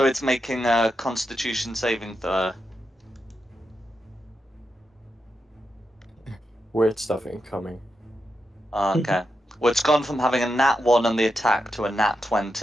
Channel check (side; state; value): both; normal; correlation 0.86